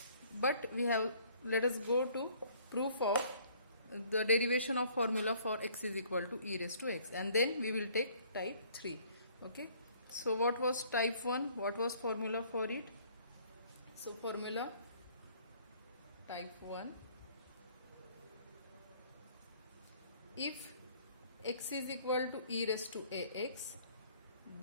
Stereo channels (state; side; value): inverted; both; correlation -0.59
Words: but let us go to proof of the derivation of formula for x is equal to e raised to x, and then we will take type 3. Okay, so what was type 1, what was formula for it? So formula type 1, if x is equal to e raised to ax,